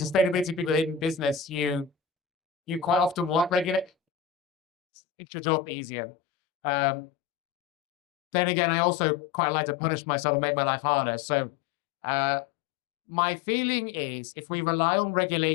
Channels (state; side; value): drops out; right; at 3.9 s